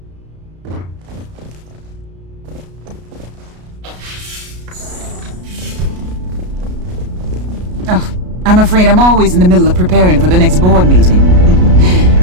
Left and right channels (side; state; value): left; late; 33 ms